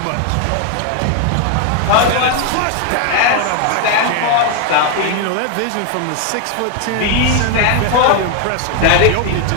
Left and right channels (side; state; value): both; different; correlation 0.01